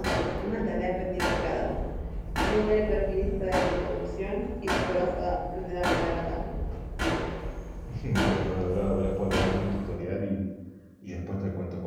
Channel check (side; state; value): both; identical; correlation 1.00